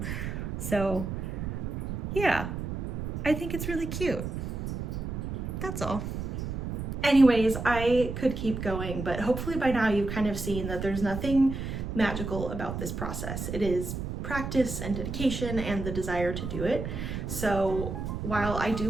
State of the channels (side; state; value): right; noise; rumble, 5 dB below the sound